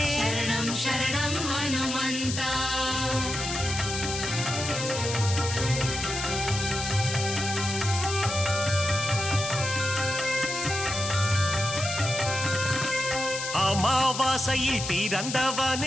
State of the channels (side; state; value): left; noise; hiss, 5 dB below the sound